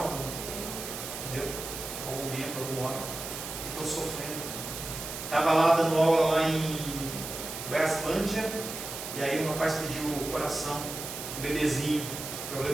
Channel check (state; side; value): noise; right; hiss, 7 dB below the sound